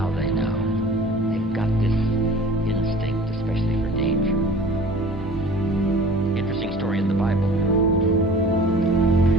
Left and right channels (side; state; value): both; normal; correlation 0.45